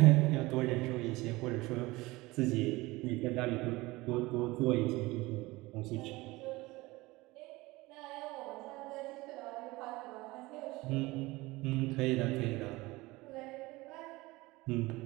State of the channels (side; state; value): left; quieter; 21.1 dB